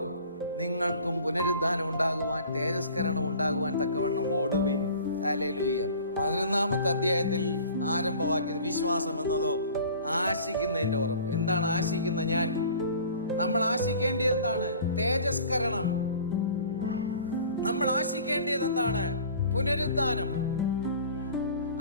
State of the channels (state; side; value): inverted; both; correlation -0.46